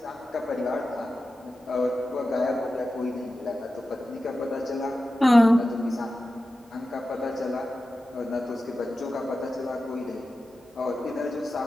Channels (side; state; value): both; normal; correlation 0.93